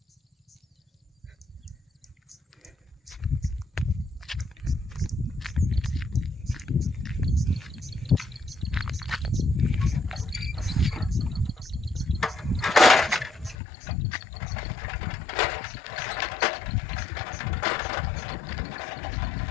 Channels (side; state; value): right; drops out; at 13.6 s